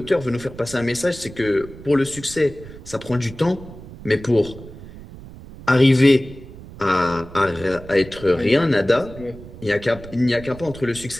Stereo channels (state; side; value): noise; right; rumble, 16 dB below the sound